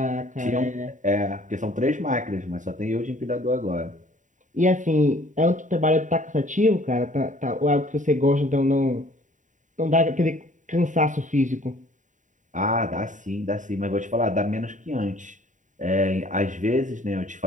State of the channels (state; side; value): late; left; 0.36 ms